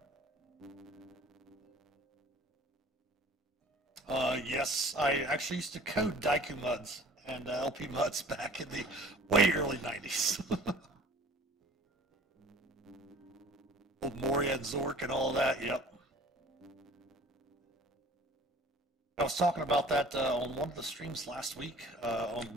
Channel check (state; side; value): normal; both; correlation 0.48